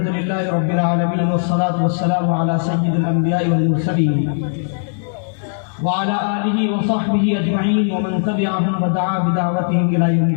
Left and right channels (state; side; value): silent; right; digital silence